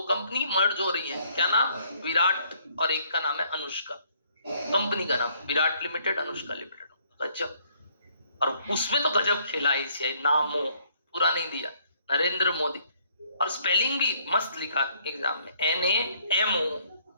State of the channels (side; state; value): both; inverted; correlation -0.66